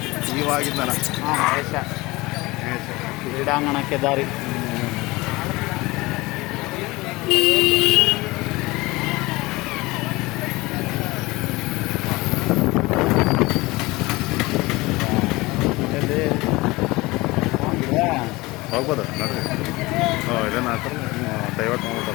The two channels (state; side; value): quieter; right; 21.8 dB